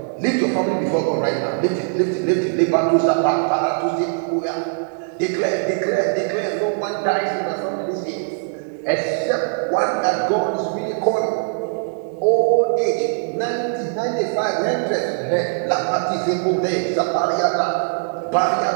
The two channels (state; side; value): silent; left; 65 dB below the other